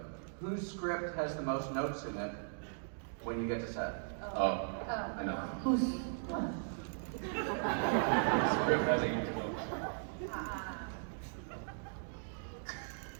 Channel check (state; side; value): silent; left; digital silence